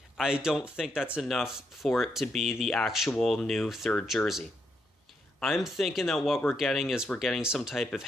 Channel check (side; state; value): both; normal; correlation 0.79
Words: I don't think that's enough for it to be the actual new third jersey. I'm thinking that what we're getting is some type of